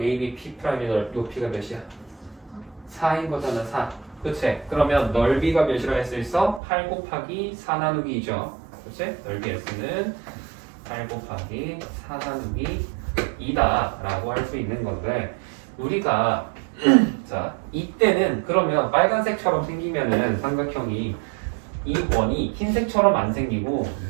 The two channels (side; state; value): left; drops out; at 6.6 s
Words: AB P'의 높이가 몇이야? 4인 거잖아. 4. 그치? 그러면 넓이가 몇이라 할 수 있어? 8 곱하기 4 나누기 2죠. 그치? 넓이 S는 8 곱하기 4 나누기 2다 라고 할 수 있는 건데 우리가 자 이때는 그러면 빨간색처럼 생기면은 삼각형이 이 원이 흰색처럼 안 생기고